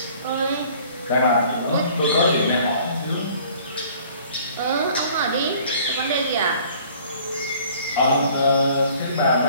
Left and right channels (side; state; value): both; inverted; correlation -0.54